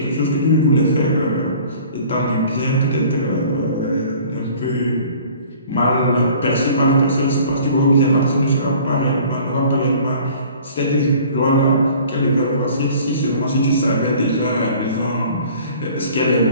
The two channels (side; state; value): both; inverted; correlation -0.49